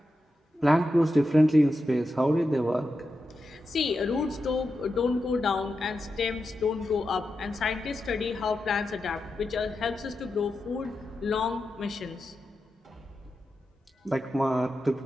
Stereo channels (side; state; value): both; normal; correlation 0.89